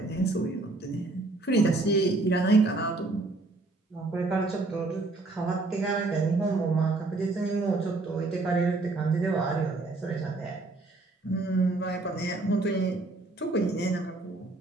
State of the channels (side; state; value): left; quieter; 3.2 dB